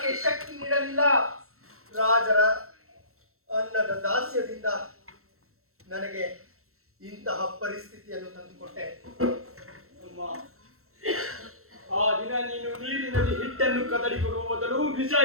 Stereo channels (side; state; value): left; late; 0.63 ms